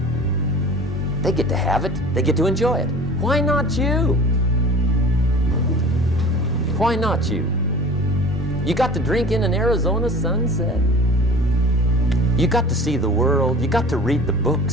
They get to have it, they get to enjoy it. Why not you? Why not you? You got to drink in an Arizona sunset. You got to see the world, you got to read the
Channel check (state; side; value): normal; both; correlation 0.41